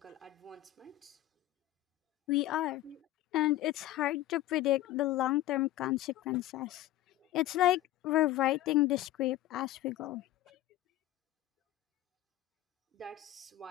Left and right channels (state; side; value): quieter; right; 15.0 dB